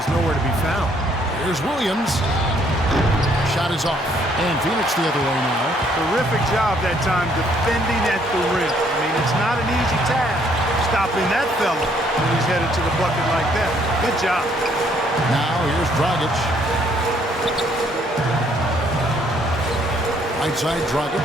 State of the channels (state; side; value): normal; both; correlation 0.66